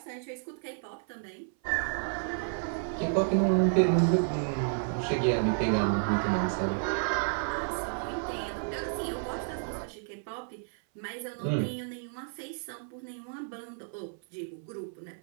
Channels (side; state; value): left; silent; 57 dB below the other